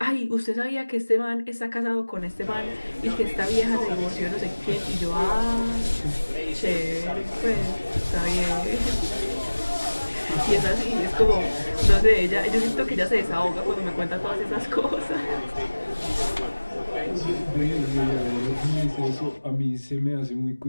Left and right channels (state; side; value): inverted; both; correlation -1.00